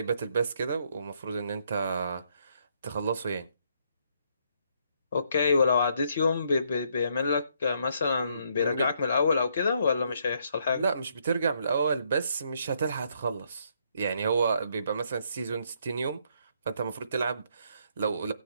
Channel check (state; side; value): inverted; both; correlation -0.71